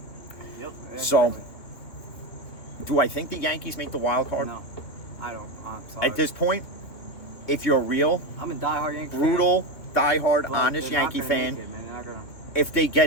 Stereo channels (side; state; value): right; late; 2.7 ms